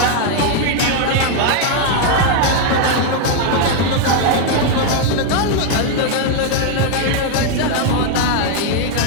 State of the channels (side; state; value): both; different; correlation 0.01